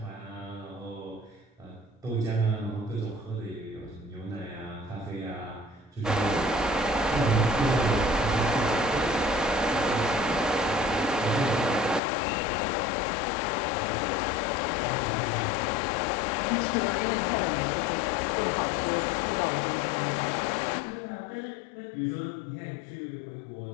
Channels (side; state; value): right; drops out; at 12.0 s